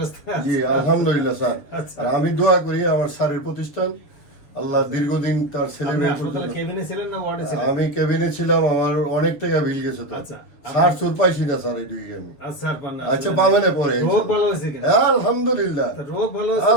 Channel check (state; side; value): late; right; 7.2 ms